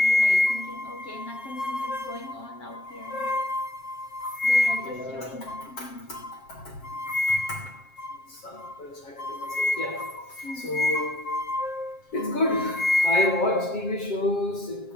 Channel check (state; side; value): late; right; 7.4 ms